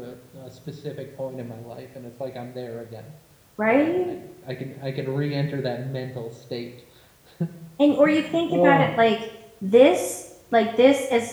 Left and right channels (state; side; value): identical; both; correlation 1.00